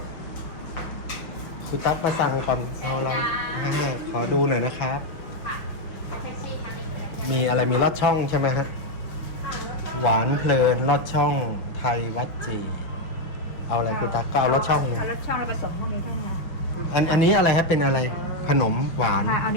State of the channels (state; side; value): late; right; 5.7 ms